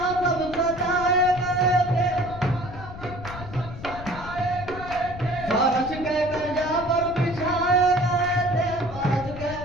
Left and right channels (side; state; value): left; noise; rumble, 12 dB below the sound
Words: सब सजाए गए थे, फर्श के कशा पर बिछाए गए थे, फर्श के